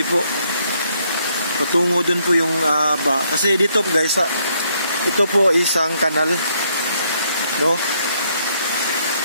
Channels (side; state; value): both; inverted; correlation -0.71